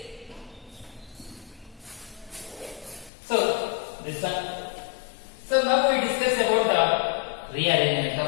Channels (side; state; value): right; drops out; at 3.1 s